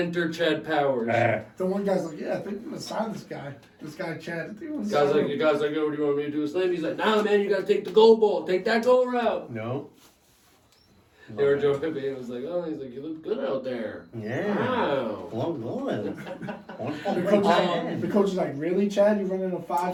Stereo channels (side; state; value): both; identical; correlation 1.00